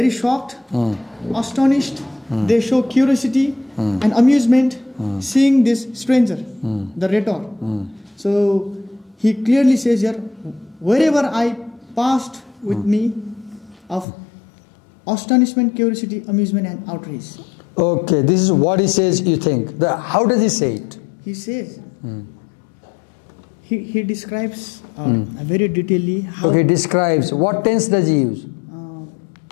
shocked, astonished. They show curiosity and amusement seeing this stranger, the rhetor. So he clearly says here, wherever I passed with me of astonishment, curiosity, amusement and outrage. Okay, this is what he says, you think. How does he say it? He says, he describes very detailedly how... Okay, he describes. What tense does he use?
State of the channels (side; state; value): right; drops out; at 14.1 s